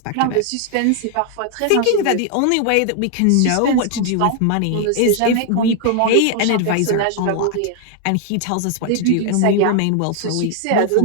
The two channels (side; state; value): both; different; correlation 0.00